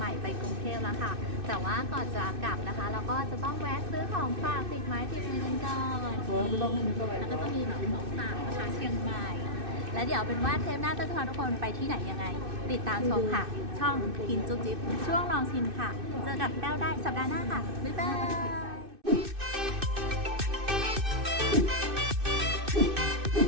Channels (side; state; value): left; late; 2.6 ms